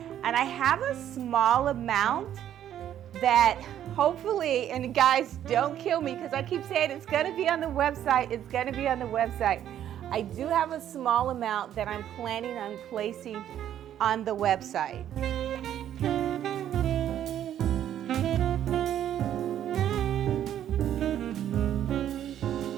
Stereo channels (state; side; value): quieter; left; 10.8 dB